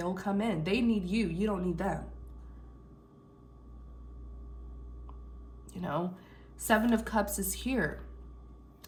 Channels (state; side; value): identical; both; correlation 1.00